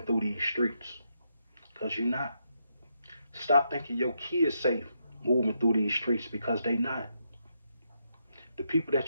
through these streets, because you're not. Stop thinking your kids safe moving through these streets, because they not. people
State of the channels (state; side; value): inverted; both; correlation -0.80